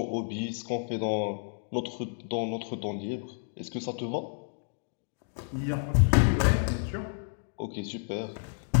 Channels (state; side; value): silent; right; digital silence